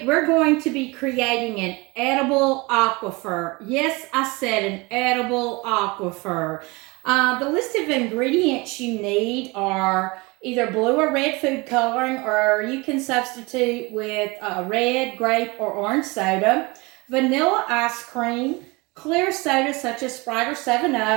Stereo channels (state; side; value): quieter; left; 25.2 dB